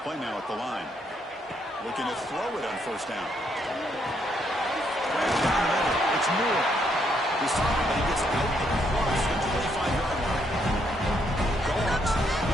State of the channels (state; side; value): normal; both; correlation 0.74